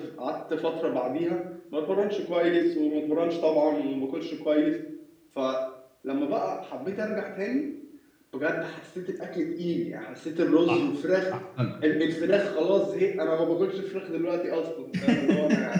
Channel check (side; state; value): both; identical; correlation 1.00